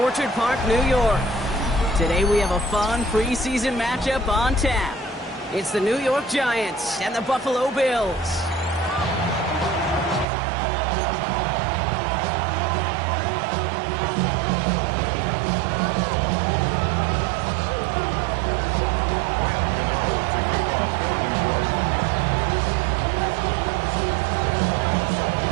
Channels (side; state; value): left; drops out; at 10.2 s